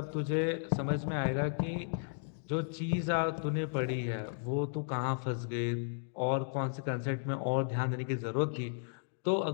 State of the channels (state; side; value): silent; right; digital silence